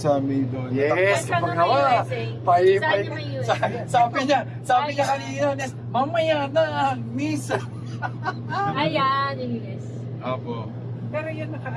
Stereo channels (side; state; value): both; identical; correlation 1.00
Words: may doon. Yes, Saan pag yung nawa. USA? Pay, Saan yung USA? sabi niya kanina, Nes, mamaya na, miss. Ayan, yung US. Apo. Pero yun,